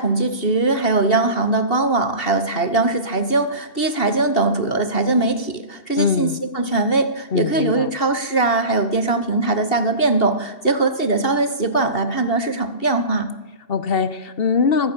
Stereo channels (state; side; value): late; right; 2.7 ms